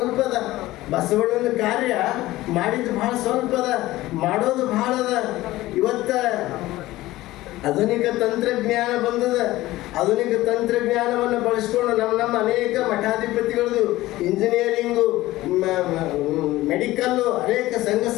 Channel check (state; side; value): quieter; right; 17.1 dB